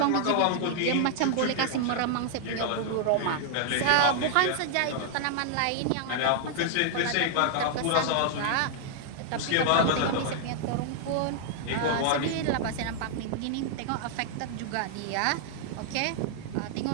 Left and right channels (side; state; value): both; different; correlation -0.01